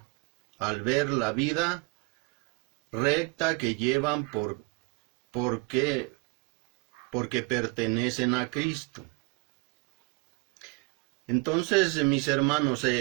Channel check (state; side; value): quieter; left; 28.7 dB